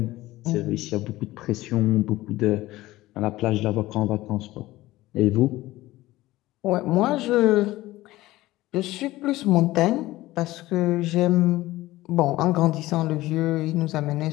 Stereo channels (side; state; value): right; quieter; 17.5 dB